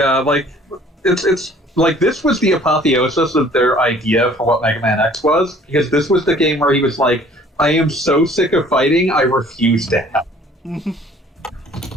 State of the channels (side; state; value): both; normal; correlation 0.54